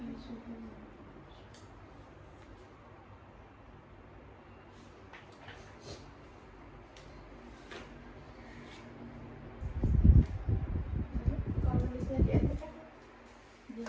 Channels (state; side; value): identical; both; correlation 1.00